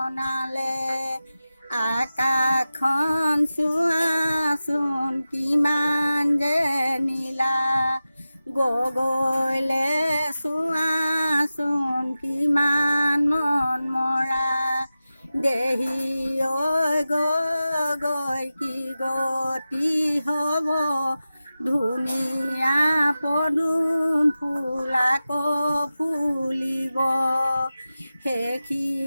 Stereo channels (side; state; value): both; inverted; correlation -0.94